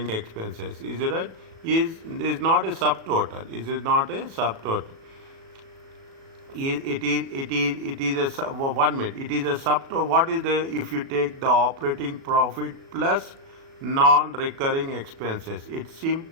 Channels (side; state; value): left; late; 36 ms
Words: expenses, is it right? Is not a subtotal. Is not a subtotal. It is a 1 minute. It is a subtotal. What is the, if you take the operating profit plus non-recurring expenses, it